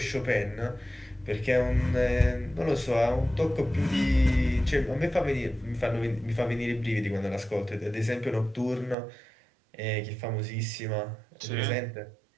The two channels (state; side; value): drops out; left; at 9.0 s